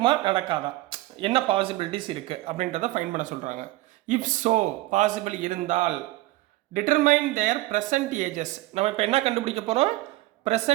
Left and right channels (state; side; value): quieter; left; 18.4 dB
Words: நடக்காதா, என்ன பாசிபிலிட்டிஸ் இருக்குது அப்படின்றத ஃபைன் பண்ண சொல்கிறாங்க. இஃப் ஸோ, பாசிபிள் இருந்தால் டிட்டர்மைன் தேர் ப்ரெசன்ட் ஏஜஸ். நம்ம இப்போ என்ன கண்டுபிடிக்க போகிறோம்?